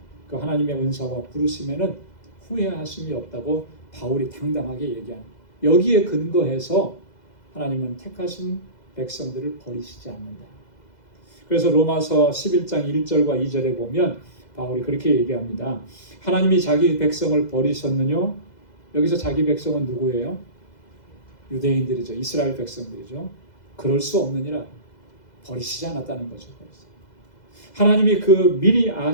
그 하나님의 은사와 부르심에는 후회하심이 없다고 바울이 당당하게 얘기합니다. 여기에 근거해서 하나님은 택하신 백성들을 버리시지 않는다. 그래서 로마서 11장 1절과 2절에 보면 바울이 그렇게 얘기합니다. 하나님이 자기 백성을 버리셨느냐? 여기서 자기 백성은 누구예요? 유대인들이죠. 이스라엘 백성들이죠. 그럴 수 없느니라. 버리시지 않았다는 거죠. 하나님이 그 미리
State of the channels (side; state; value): right; late; 2.0 ms